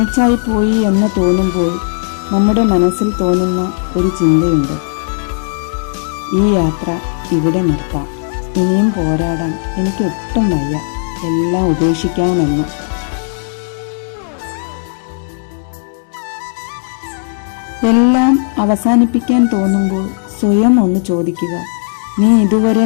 പോയി എന്ന് തോന്നുമ്പോൾ നമ്മുടെ മനസ്സിൽ തോന്നുന്ന ഒരു ചിന്തയുണ്ട്: ഈ യാത്ര ഇവിടെ നിർത്താം, ഇനിയും പോരാടാൻ എനിക്കൊട്ടും വയ്യ, എല്ലാം ഉപേക്ഷിക്കാമെന്ന്. എല്ലാം അവസാനിപ്പിക്കാൻ തോന്നുമ്പോൾ സ്വയം ഒന്ന് ചോദിക്കുക: നീ ഇതുവരെ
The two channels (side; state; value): right; silent; digital silence